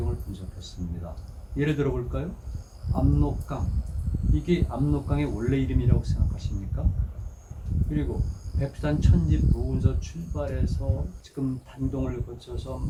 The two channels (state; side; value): identical; both; correlation 1.00